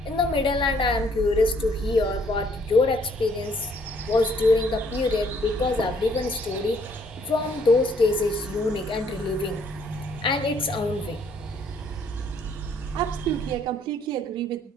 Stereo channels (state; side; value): normal; both; correlation 0.64